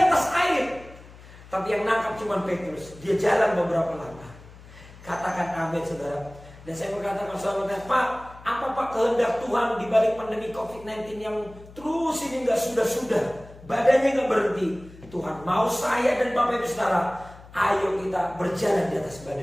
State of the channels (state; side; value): noise; left; hum, 20 dB below the sound